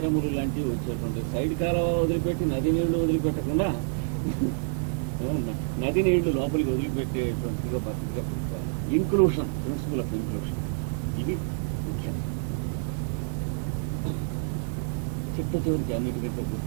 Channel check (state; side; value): silent; left; digital silence